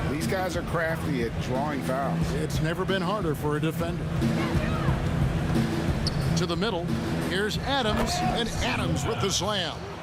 these guys are crafty at drawing fouls. It's never been harder for a defender. To the middle, here's Adams, and Adams with the slam.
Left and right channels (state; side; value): identical; both; correlation 1.00